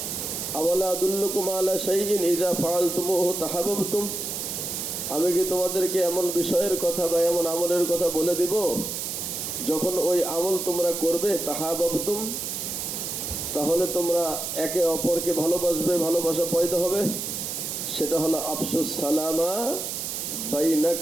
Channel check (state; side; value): noise; right; hiss, 4 dB below the sound